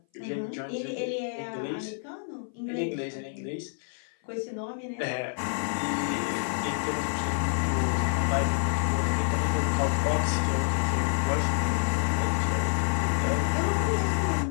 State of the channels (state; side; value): silent; right; 57 dB below the other